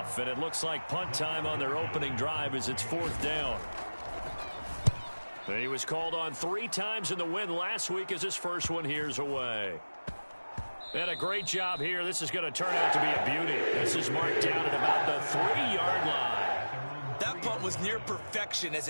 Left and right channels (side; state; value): both; inverted; correlation -1.00